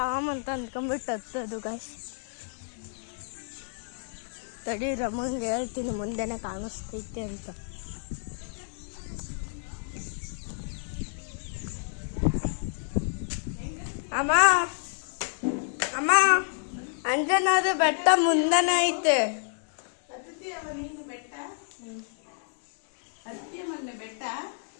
ಅಂತ ಅಂದ್ಕೊಂಡ್ಬಿಟ್ಟು ಹತ್ತದು ಗಾಯ್ಸ್. ತಡಿ, ರಮಂಗೆ ಹೇಳ್ತೀನಿ ಮುಂದೆನೆ ಕಾಣಿಸ್ತೈತೆ ಅಂತ. ಅಮ್ಮ ಅಮ್ಮ, ಅಂಜನಾದ್ರಿ ಬೆಟ್ಟ ಮುಂದೆನೆ ಐತೆ. ಬೆಟ್ಟ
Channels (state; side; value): silent; right; digital silence